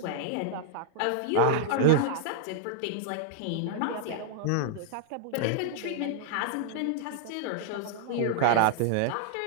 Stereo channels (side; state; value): both; different; correlation -0.01